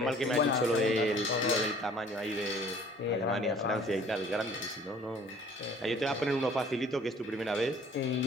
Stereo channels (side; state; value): both; normal; correlation 0.53